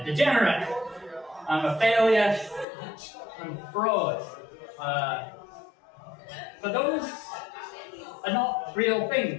a degenerate. I'm a failure. I'm a fraud. But those are not real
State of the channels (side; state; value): right; drops out; at 2.7 s